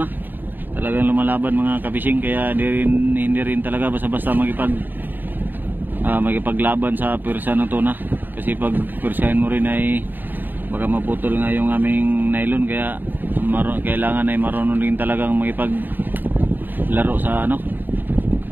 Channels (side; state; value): left; late; 0.091 ms